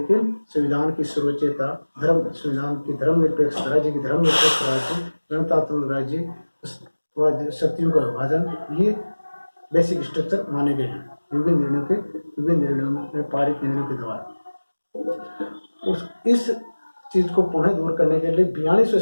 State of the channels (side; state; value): both; inverted; correlation -1.00